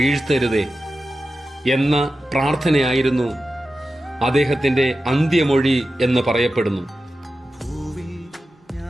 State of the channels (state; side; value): normal; both; correlation 0.92